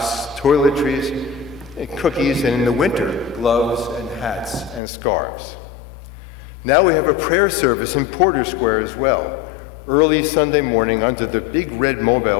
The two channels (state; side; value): drops out; right; at 4.8 s